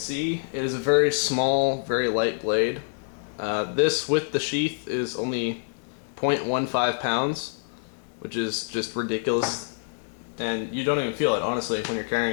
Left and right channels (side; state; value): right; silent; digital silence